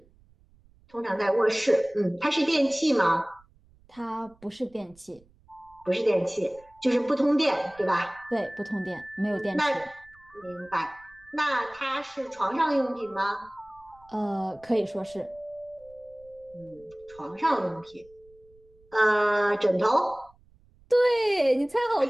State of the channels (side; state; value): right; noise; rumble, 29 dB below the sound